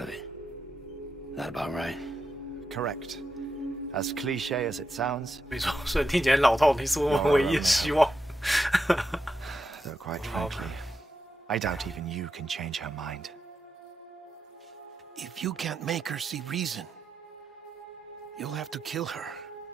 it. That about right? Correct. As cliche as it sounds. 没错，虽然听起来老套，你是我们唯一的希望。 Though quite frankly, I doubt even you can change her mind. If you can't make her see reason, you'll have to kill her.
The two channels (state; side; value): normal; both; correlation 0.86